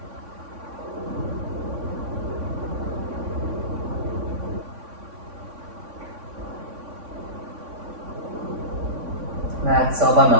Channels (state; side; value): late; left; 3.6 ms